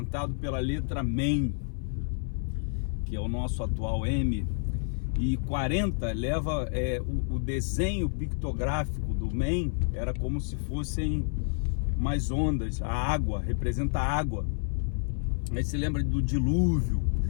pela letra Mem, que é o nosso atual M, e 40 leva o desenho pictográfico do Mem, era como se fossem umas ondas, a água, representa a água. Aí se lembra do dilúvio,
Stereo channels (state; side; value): silent; right; 58 dB below the other